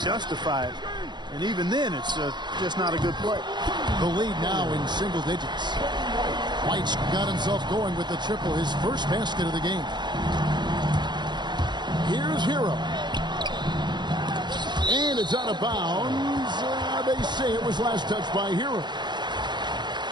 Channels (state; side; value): late; left; 0.21 ms